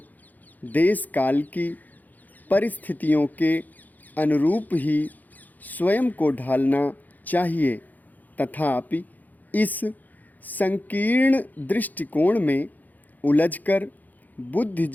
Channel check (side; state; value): right; late; 0.083 ms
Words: देश काल की परिस्थितियों के अनुरूप ही स्वयं को ढालना चाहिए, तथापि इस संकीर्ण दृष्टिकोण में उलझकर